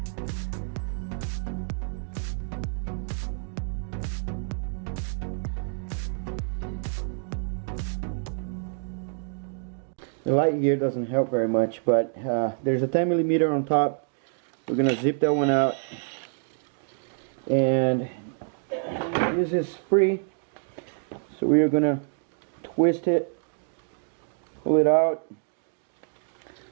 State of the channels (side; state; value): left; silent; digital silence